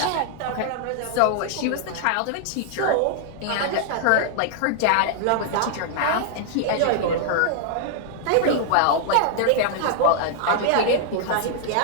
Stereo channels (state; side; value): different; both; correlation -0.01